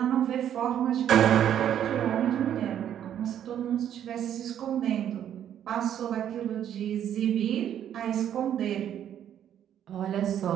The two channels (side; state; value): left; quieter; 10.1 dB